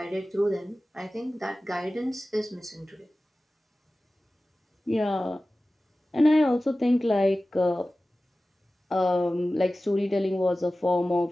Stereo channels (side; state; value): both; normal; correlation 0.96